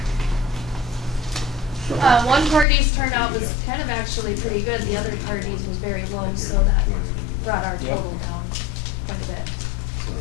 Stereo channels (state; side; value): drops out; right; at 2.7 s